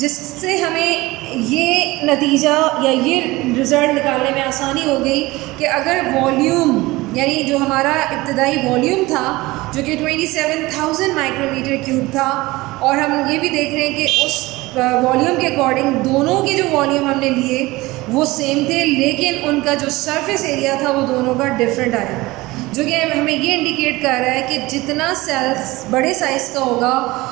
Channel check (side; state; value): left; quieter; 20.5 dB